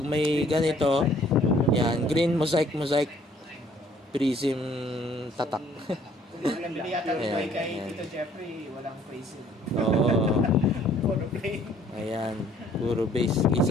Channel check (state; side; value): normal; both; correlation 0.59